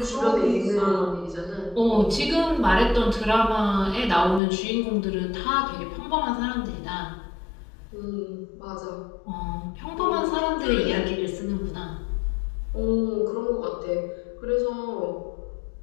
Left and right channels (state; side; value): drops out; right; at 4.4 s